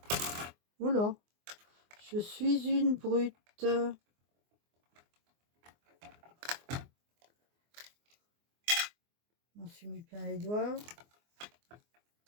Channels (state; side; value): late; left; 24 ms